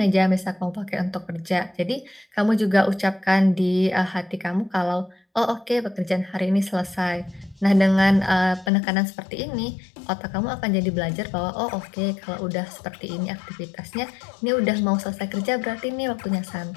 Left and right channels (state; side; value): drops out; right; at 8.7 s